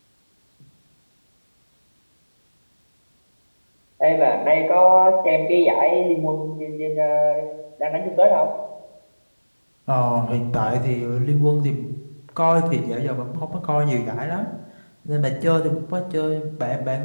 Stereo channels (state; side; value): inverted; both; correlation -1.00